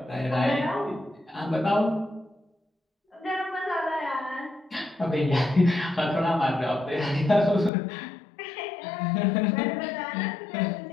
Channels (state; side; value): drops out; right; at 7.7 s